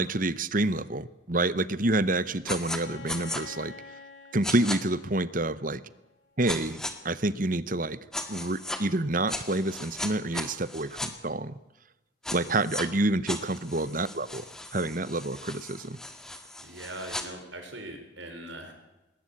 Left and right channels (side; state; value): both; normal; correlation 0.45